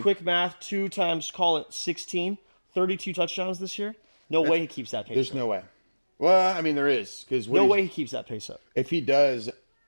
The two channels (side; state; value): both; inverted; correlation -1.00